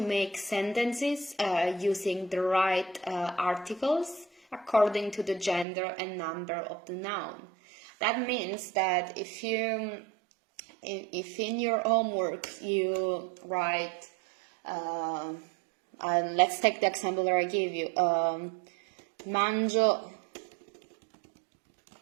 make sentences using the right articles according to the gender and number of the noun. That means that if in your homework you write, let's take the example that I gave you, mangio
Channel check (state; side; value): drops out; left; at 5.7 s